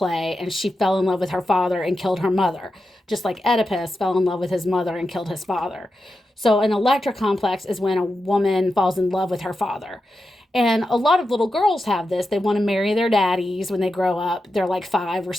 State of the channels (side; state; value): both; normal; correlation 0.89